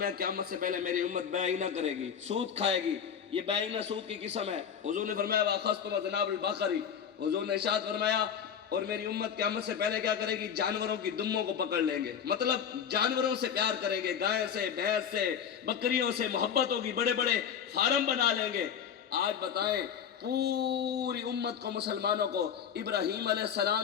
قیامت سے پہلے میری امت بیعینہ کرے گی، سود کھائے گی۔ یہ بیعینہ سود کی قسم ہے۔ حضور نے فرمایا واخذتم ذناب البقر، حضور نے ارشاد فرمایا اور میری امت قیامت سے پہلے کیا کرے گی؟ جانوروں کی دموں کو پکڑ لیں گے، مطلب جانوروں سے پیار کریں گے، گائے سے، بھینس سے، بکریوں سے محبت ہوگی، بڑے بڑے فارم بنا لیں گے۔ آج بتائیں پوری امت کو، مسلمانوں کو ابراہیم علیہ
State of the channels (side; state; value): right; quieter; 8.0 dB